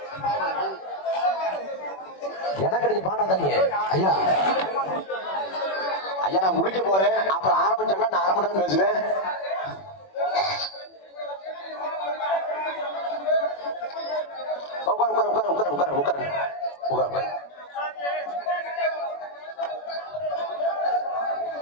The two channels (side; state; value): right; late; 21 ms